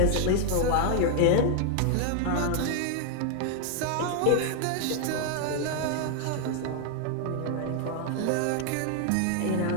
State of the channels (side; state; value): both; different; correlation 0.00